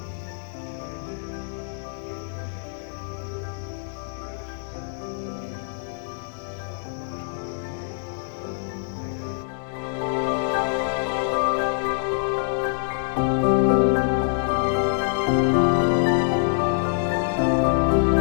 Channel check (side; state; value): right; silent; digital silence